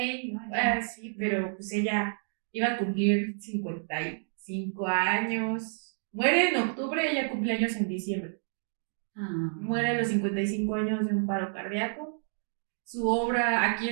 No, sí, pero pues ella iba a cumplir 55 años. Muere en octubre, ella cumple años en diciembre. Muere a los 55 años de un paro cardíaco. Su obra aquí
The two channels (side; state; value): left; silent; digital silence